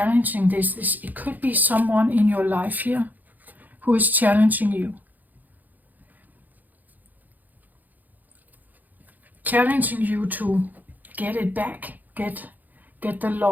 this. It could be someone in your life here who is challenging you. Challenging you to get it back, get the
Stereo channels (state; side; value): late; left; 0.083 ms